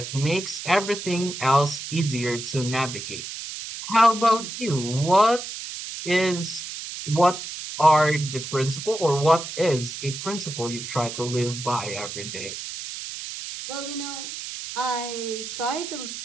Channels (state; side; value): noise; right; hiss, 8 dB below the sound